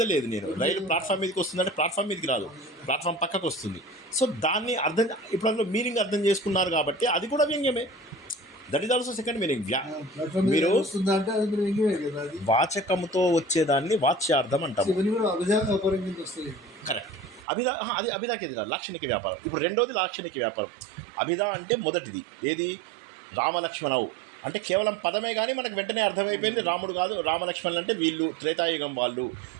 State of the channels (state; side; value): drops out; left; at 17.4 s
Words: లేదు, నేను రైలు ప్లాట్ఫామ్ మీదకి వస్తుందంటే ప్లాట్ఫామ్ మీదకి రాదు, ప్లాట్ఫామ్ పక్కకు వస్తుంది. సో దాన్ని అర్థం, ఇప్పుడు అందులో మీనింగ్ అర్థం చేసుకున్నారు కాబట్టి అది కూడా వ్యంగ్యమే. That is also second meaning. మీరు వాచకముతో వచ్చేదాన్ని వాచ్యార్థం అంటాము. కరెక్ట్. అభిధా అది అభిధాకి ఎదురా లాక్షణిక వ్యాపారం. ఇప్పుడు రెండోది లాక్షణిక వ్యాపారం. అభిధా అంటే మొదటిది ఏది, రామలక్ష్మణవు అంటే కేవలం పదమే కానీ మనకు వెంటనే అర్థమైపోయింది రాముడు కాదు, రామలక్ష్మణులు అంటే వీళ్ళు త్రేతాయుగం వాళ్ళు,